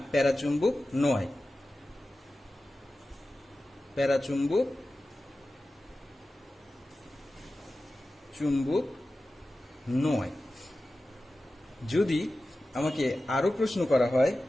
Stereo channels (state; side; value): normal; both; correlation 0.94